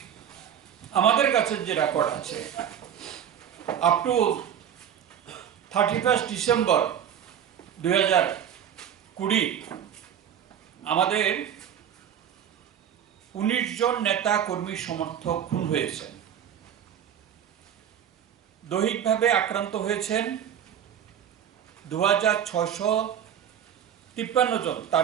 আমাদের কাছে যে রেকর্ড আছে আপ টু 31 ডিসেম্বর 2020 আমাদের 19 জন নেতা কর্মী সমর্থক খুন হয়েছেন, দৈহিকভাবে আক্রান্ত হয়েছেন 2653 জন,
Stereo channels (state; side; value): quieter; left; 9.2 dB